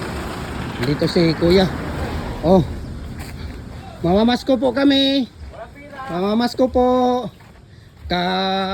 Nandito si Kuya. Oh. Mamamasko po kami. Mamamasko po.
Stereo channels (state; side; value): identical; both; correlation 1.00